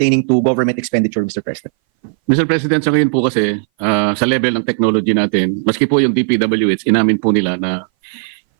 to government expenditure, Mr. President. Mr. President, sa ngayon po kasi, sa level ng technology natin, maski po yung DPWH, inamin po nila na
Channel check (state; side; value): silent; left; 61 dB below the other